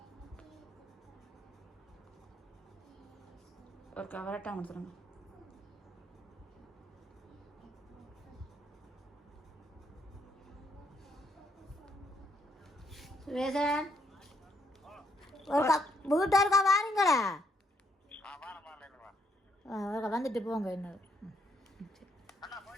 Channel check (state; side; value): normal; both; correlation 0.72